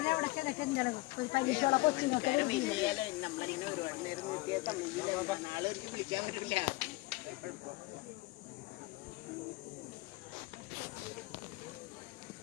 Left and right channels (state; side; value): quieter; right; 22.6 dB